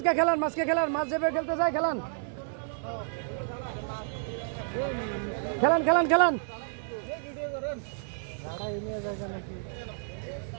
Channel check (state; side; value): silent; left; 58 dB below the other